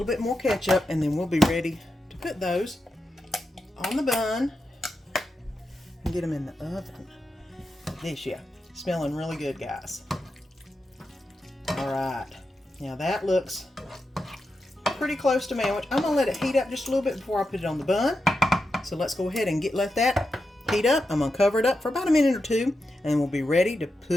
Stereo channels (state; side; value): normal; both; correlation 0.88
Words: bit more ketchup, and then we'll be ready to put those on the bun and get them in the oven. This, yeah, smelling really good, guys. All right, now that looks pretty close to sandwich. I'm gonna let it heat up just a little bit before I put it on the bun. So let's go ahead and let that heat up. I'm gonna cover it up for about 1 minute or 2, and we'll be ready to